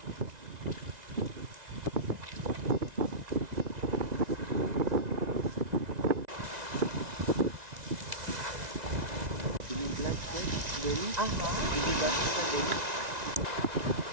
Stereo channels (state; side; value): late; left; 1.9 ms